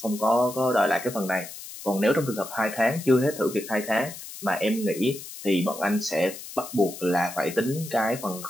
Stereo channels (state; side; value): noise; left; hiss, 13 dB below the sound